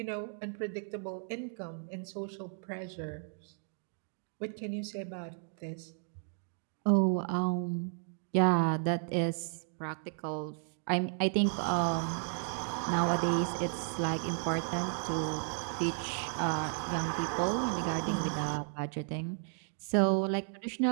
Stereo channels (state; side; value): silent; left; 55 dB below the other